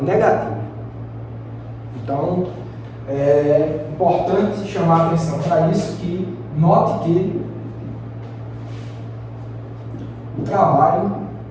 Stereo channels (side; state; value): both; identical; correlation 1.00